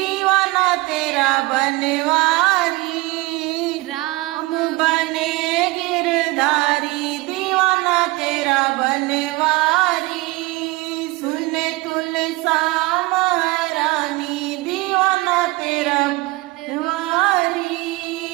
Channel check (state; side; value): quieter; left; 22.1 dB